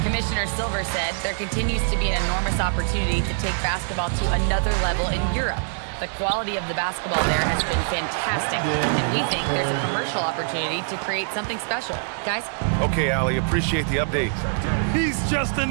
Commissioner Silver said there continues to be an enormous opportunity to take basketball to another level in Europe. The quality of the basketball there has been fantastic, and we think there's a commercial opportunity to create something special. Guys? Okay, Allie, appreciate the update. He's just an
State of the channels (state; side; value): silent; left; digital silence